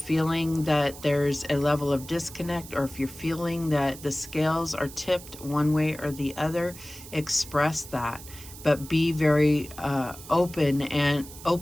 that there's a level of disconnect, or if you're feeling that the scales are tipped one way or the other, express that. But be very open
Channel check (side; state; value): right; noise; hiss, 16 dB below the sound